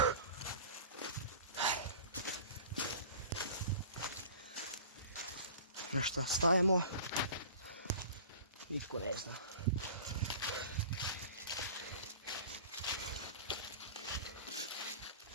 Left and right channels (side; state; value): both; inverted; correlation -0.41